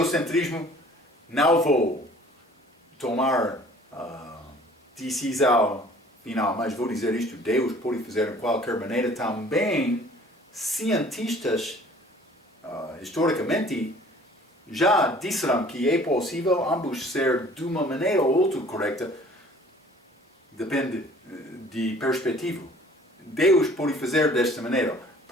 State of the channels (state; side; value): normal; both; correlation 0.52